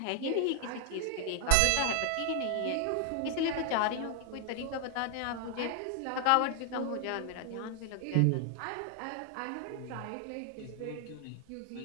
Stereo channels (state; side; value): different; both; correlation 0.00